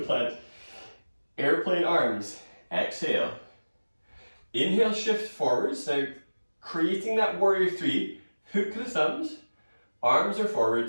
Airplane arms. Exhale. Inhale, shift forwards. Now, creating that warrior three, hook the thumbs, arms are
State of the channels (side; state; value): both; inverted; correlation -1.00